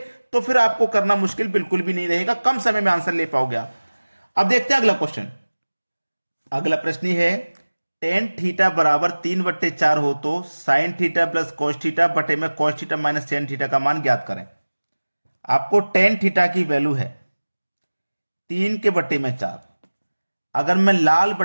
तो फिर आपको करना मुश्किल बिल्कुल भी नहीं रहेगा, कम समय में आंसर ले पाओगे आप। अब देखते हैं अगला क्वेश्चन। अगला प्रश्न है, टेन थीटा बराबर 3/4 हो तो sine theta plus cos theta बटे में cos theta minus tan theta का मान ज्ञात करें। आपको टेन थीटा की वैल्यू है 3/4। अगर मैं लाल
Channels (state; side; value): inverted; both; correlation -1.00